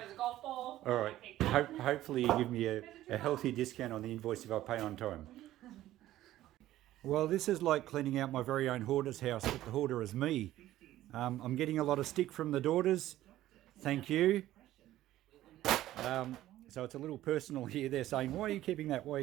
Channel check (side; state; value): left; quieter; 14.3 dB